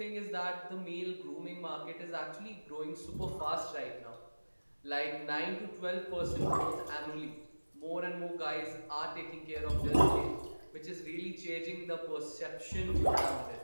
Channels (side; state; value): both; inverted; correlation -1.00